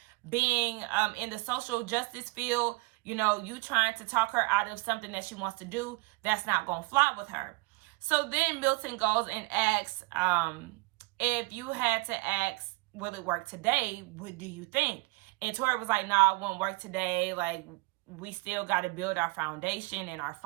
being in the social justice field, you trying to talk her out of something that she wants to do, that's not going to fly with her. So then Milton goes and asks, if you had to ask, will it work today? What do you think? And Tori was like, nah, it won't work today. Like, we still got to build our foundation and our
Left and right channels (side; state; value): left; quieter; 26.1 dB